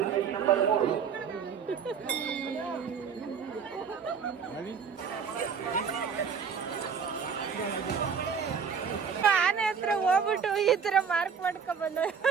ಆನೆ ಹತ್ರ ಹೋಗ್ಬಿಟ್ಟು ಈ ತರ ಮಾರ್ಕ್ ಮಾಡ್ಕೊಂಡ್ ಬಂದ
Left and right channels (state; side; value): quieter; left; 6.6 dB